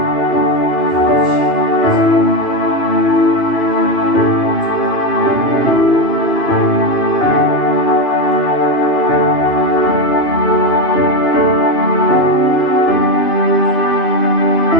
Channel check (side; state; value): right; late; 2.7 ms